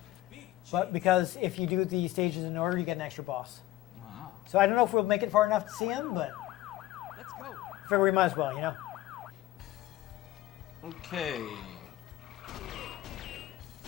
but because if you do the stages in order, you get an extra boss. Wow. So I don't know if we'll make it far enough to see him, but Let's go. figure we might as well, Okay.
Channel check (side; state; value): right; quieter; 15.5 dB